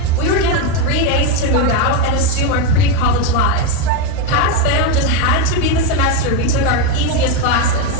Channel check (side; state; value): both; different; correlation 0.04